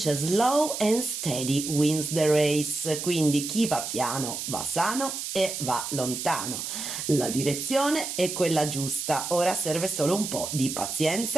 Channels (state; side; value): noise; right; hiss, 5 dB below the sound